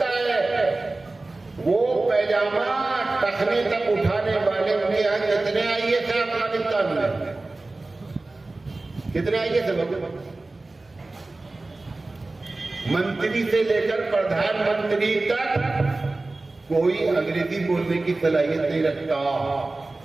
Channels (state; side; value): quieter; left; 3.2 dB